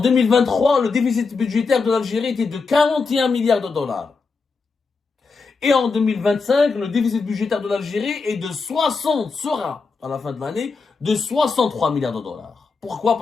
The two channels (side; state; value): right; quieter; 4.5 dB